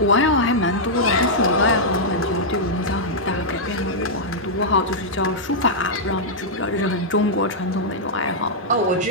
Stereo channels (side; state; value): both; normal; correlation -0.08